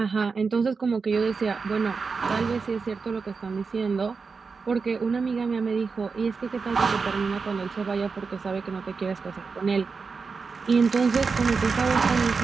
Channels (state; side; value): quieter; left; 4.8 dB